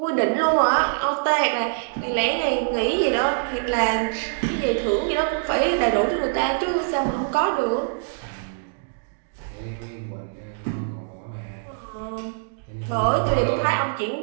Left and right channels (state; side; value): silent; left; digital silence